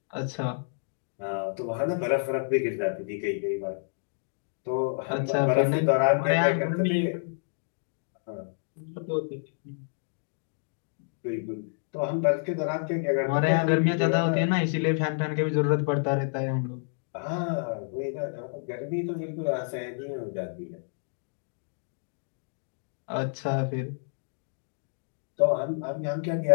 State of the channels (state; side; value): silent; right; digital silence